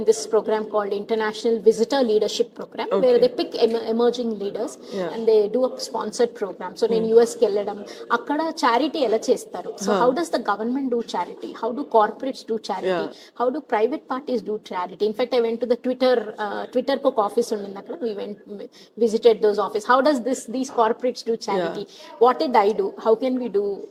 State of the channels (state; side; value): identical; both; correlation 1.00